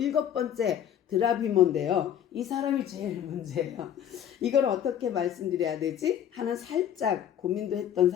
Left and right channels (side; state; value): right; quieter; 9.7 dB